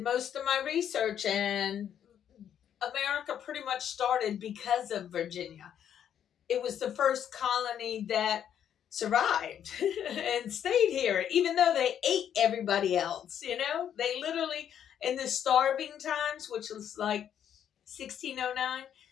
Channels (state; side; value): quieter; right; 9.4 dB